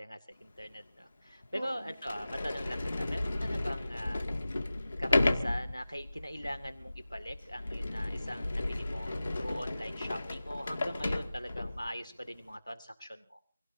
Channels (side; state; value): both; inverted; correlation -0.96